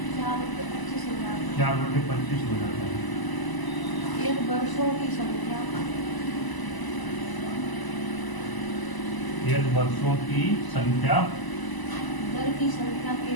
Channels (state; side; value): late; right; 1.0 ms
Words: 4 रुपये 25 हो जाता है। 4 रुपये 25 हो जाता है। एक वर्षों की संख्या यदि वर्षों की संख्या दर की संख्या के